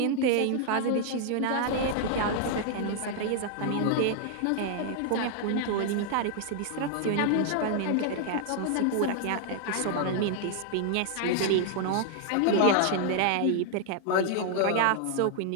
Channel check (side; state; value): both; different; correlation 0.00